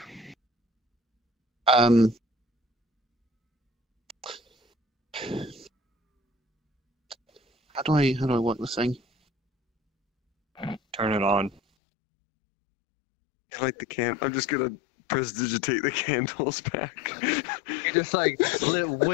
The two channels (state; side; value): drops out; right; at 11.6 s